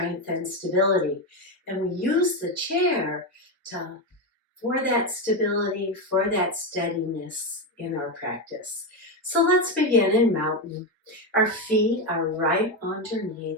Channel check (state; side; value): normal; both; correlation 0.11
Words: and stability. And we use the chair for that stability, for that steadiness in our practice. So let's begin in mountain. Our feet are right